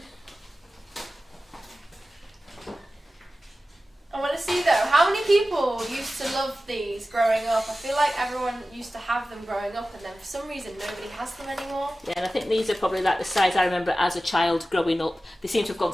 I want to see though, how many people used to love these growing up? I feel like everyone used to have them growing up, and then for some reason nobody has them anymore. Yeah, and I think these are probably like the size I remember as a child growing up. They seem to have gone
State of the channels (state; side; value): normal; both; correlation 0.95